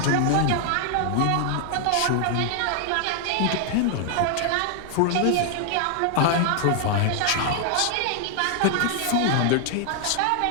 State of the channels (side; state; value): both; different; correlation 0.00